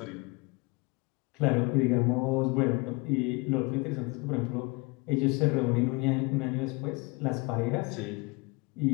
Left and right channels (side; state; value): right; quieter; 26.7 dB